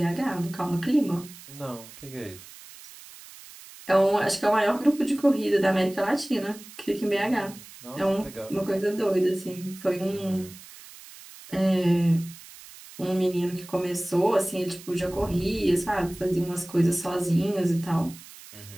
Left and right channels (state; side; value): noise; right; hiss, 18 dB below the sound